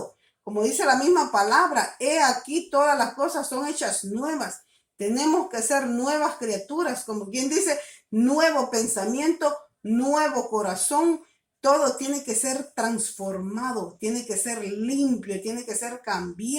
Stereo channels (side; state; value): both; identical; correlation 1.00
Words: Como dice la misma palabra, he aquí todas las cosas son hechas nuevas. Tenemos que ser nuevas criaturas, como quien dice, nuevo pensamiento, nuevo corazón. Todo tiene que ser transformado, tiene que ser limpio, tiene que ser